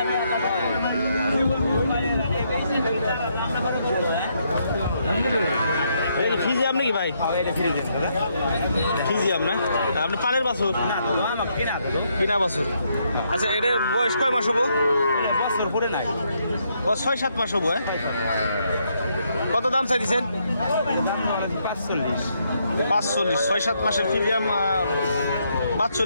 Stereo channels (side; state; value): both; inverted; correlation -0.75